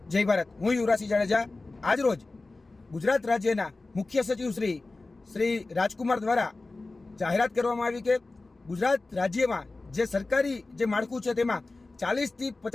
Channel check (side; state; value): right; quieter; 3.3 dB